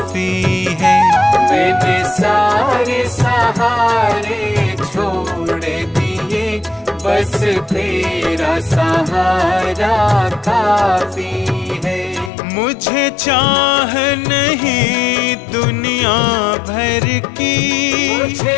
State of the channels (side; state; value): right; drops out; at 12.3 s